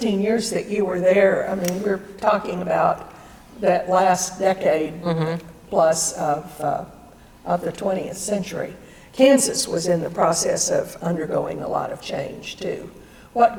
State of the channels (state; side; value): identical; both; correlation 1.00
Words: years that you were there, I mean, we're talking about that last decade plus of the 20th century. Kansas was in the process of undergoing a lot of change, too.